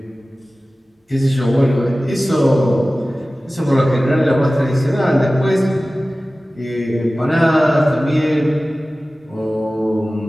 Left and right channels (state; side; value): normal; both; correlation 0.97